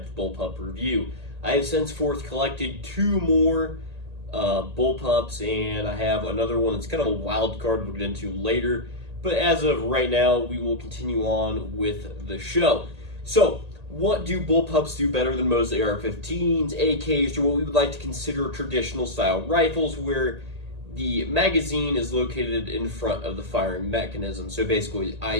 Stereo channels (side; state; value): left; late; 1.8 ms